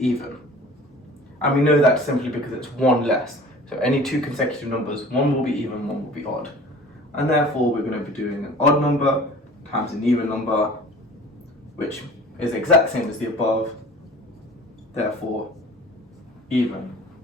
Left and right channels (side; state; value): both; normal; correlation 0.44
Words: And we know that simply because it's 1 less. So any 2 consecutive numbers, one will be even, one will be odd. And therefore we're going to be doing an odd number times an even number, which is the exact same as the above, therefore even.